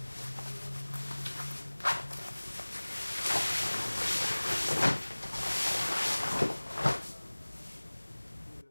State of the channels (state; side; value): inverted; both; correlation -1.00